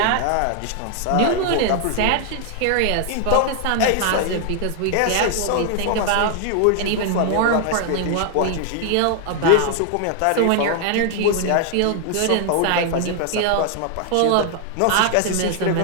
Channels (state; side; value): different; both; correlation 0.00